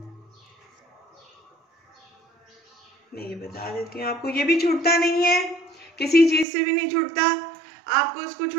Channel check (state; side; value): drops out; left; at 6.5 s